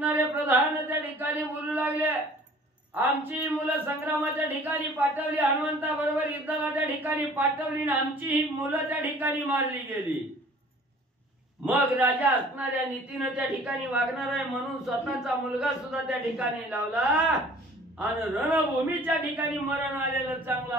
प्रधान त्या ठिकाणी बोलू लागले, आमची मुलं संग्रामाच्या ठिकाणी पाठवली, हनुमंता बरोबर युद्धाला त्या ठिकाणी पाठवली, आमची ही मुलं त्या ठिकाणी मारली गेली। मग राजा असणाऱ्या नीतीनं त्या ठिकाणी वागणार आहे म्हणून स्वतःचा मुलगा सुद्धा त्या ठिकाणी लावला आणि रणभूमीच्या ठिकाणी मरण आलेलं चांगलं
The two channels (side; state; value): both; normal; correlation 0.50